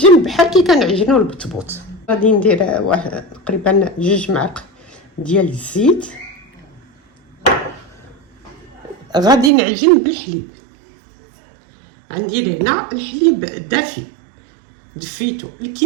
بحال كي كنعجنو البطبوط. غادي ندير تقريبا 2 معالق ديال الزيت. غادي نعجن بالحليب. غندير هنا الحليب دافي، دفيتو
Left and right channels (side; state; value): left; drops out; at 9.5 s